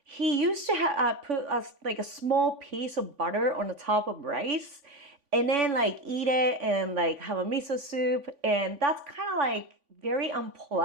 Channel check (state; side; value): late; left; 3.5 ms